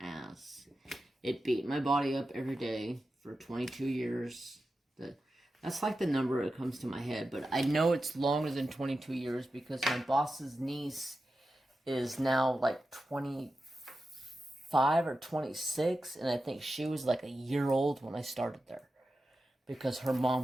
It beat my body up every day for 22 years. That's like the number that comes to my head. But I know it's longer than 22 years because my boss's niece is now like 25 or 26. And I think she was like a year old when I started there. Because her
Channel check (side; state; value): both; normal; correlation 0.91